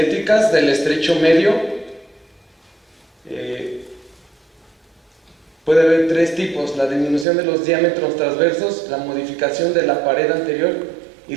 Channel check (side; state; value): left; drops out; at 7.2 s